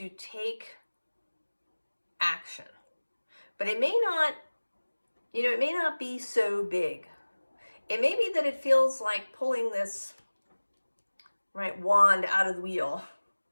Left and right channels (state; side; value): inverted; both; correlation -1.00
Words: take action, but it may not, it may not be so big. It may be that it feels like pulling this, right, wand out of the wheel.